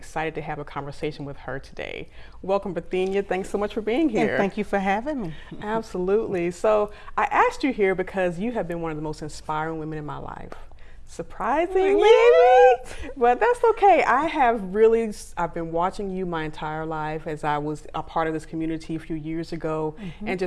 to have a conversation with her today. Welcome, Perthenia. Thanks so much for being here. And thank you for having me. Absolutely. So I asked you here because you have been one of the most inspiring women in my life. Surprisingly, but that's okay. I've been watching you my entire life as I was a part of this community a few years ago, and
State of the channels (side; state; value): both; identical; correlation 1.00